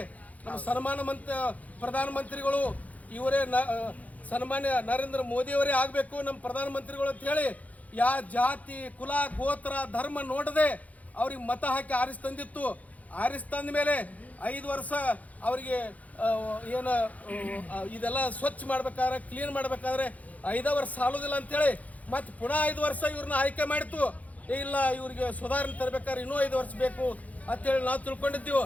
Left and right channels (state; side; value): late; right; 0.072 ms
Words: ನಮ್ಮ ಪ್ರಧಾನಮಂತ್ರಿಗಳು ಇವರೇ ಸನ್ಮಾನ್ಯ ನರೇಂದ್ರ ಮೋದಿಯವರೇ ಆಗಬೇಕು ನಮ್ಮ ಪ್ರಧಾನಮಂತ್ರಿಗಳು ಅಂತ ಹೇಳಿ ಜಾತಿ ಕುಲ ಗೋತ್ರ ಧರ್ಮ ನೋಡದೆ ಅವ್ರಿಗೆ ಮತ ಹಾಕಿ ಆರಿಸ್ತಂದಿತ್ತು. ಆರಿಸ್ತಂದ ಮೇಲೆ 5 ವರ್ಷ ಅವರಿಗೆ ಏನು ಇದೆಲ್ಲ ಸ್ವಚ್ಛ ಮಾಡ್ಬೇಕಾದ್ರೆ ಕ್ಲೀನ್ ಮಾಡ್ಬೇಕಾದ್ರೆ 5 ವರ್ಷ ಸಾಲೋದಿಲ್ಲ ಅಂತೇಳಿ ಮತ್ತೆ ಪುನಃ 5 ವರ್ಷ ಇವ್ರನ್ನ ಆಯ್ಕೆ ಮಾಡಿತ್ತು. ಇಲ್ಲ ಇವ್ರಿಗೆ ಸುಧಾರಣೆ ತರಬೇಕಾದ್ರೆ ಇನ್ನೂ 5 ವರ್ಷ ಬೇಕು ಅಂತೇಳಿ ನಾವು ತಿಳ್ಕೊಂಡಿದ್ದೀವಿ.